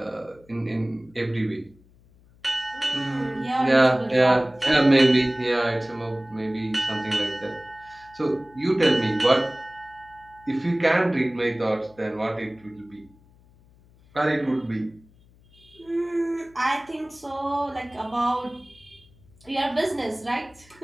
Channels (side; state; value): left; noise; hum, 28 dB below the sound